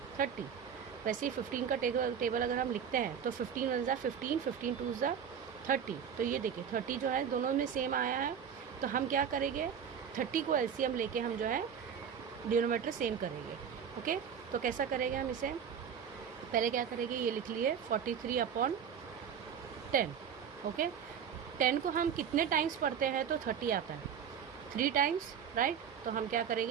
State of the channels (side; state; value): left; quieter; 7.8 dB